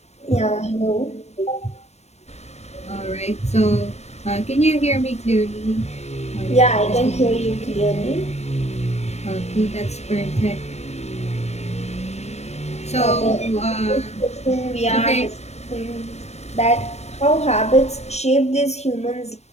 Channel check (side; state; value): right; late; 0.31 ms